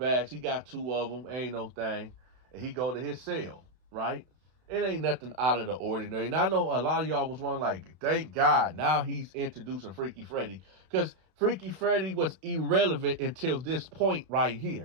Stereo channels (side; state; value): left; late; 32 ms